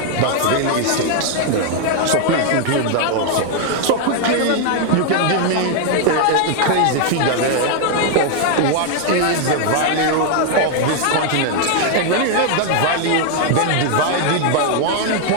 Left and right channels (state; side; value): different; both; correlation 0.00